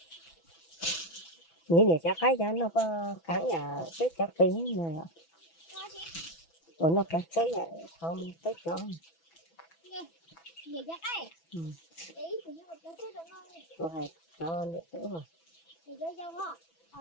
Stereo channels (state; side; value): late; right; 6.0 ms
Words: nghĩ để cho cái cho nó cắn nhà cái cho tiếng này nó cắn cái này không tới cho rồi cho nữa rồi